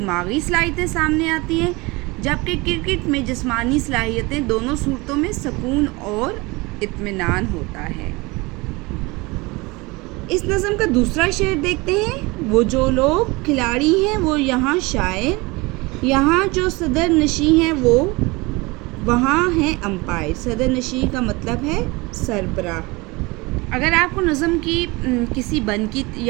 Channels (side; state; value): left; quieter; 24.2 dB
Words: صلاحیتیں سامنے آتی ہیں جبکہ کرکٹ میں جسمانی صلاحیتیں، دونوں صورتوں میں سکون اور اطمینان ہوتا ہے۔ اس نظم کا دوسرا شعر دیکھتے ہیں۔ وہ جو لوگ کھلاڑی ہیں وہ یہاں شاعر، یہاں جو صدر نشین ہیں وہ وہاں ہیں امپائر۔ صدر نشین کا مطلب ہے سربراہ۔ اگر آپ کو نظم کی کسی بند کی